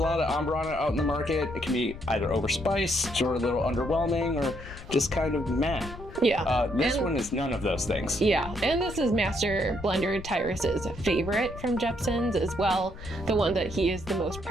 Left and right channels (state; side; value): noise; left; rumble, 13 dB below the sound